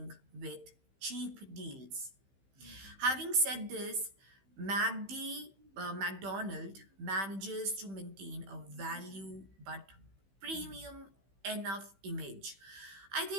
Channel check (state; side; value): late; left; 15 ms